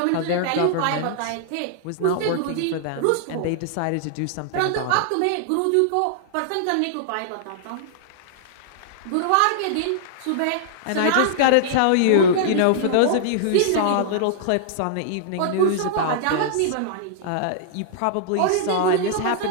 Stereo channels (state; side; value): different; both; correlation -0.01